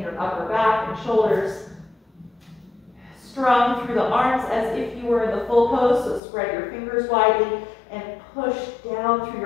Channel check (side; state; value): right; drops out; at 6.2 s